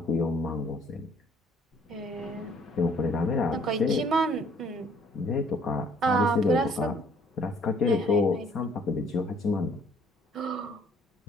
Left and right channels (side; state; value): both; normal; correlation 0.60